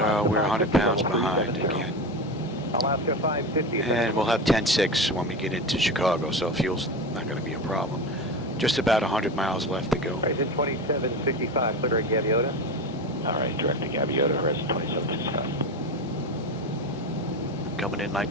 we're 100 pounds behind again. Alaska 550. And we'll have 10.6 when we get into Chicago, so fuel's not going to be a problem. Just about 100 miles left to go. Horizon 2765, clear at Gaviota. All right, direct to Gaviota, Horizon 2765. Coming in like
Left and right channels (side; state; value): both; normal; correlation 0.23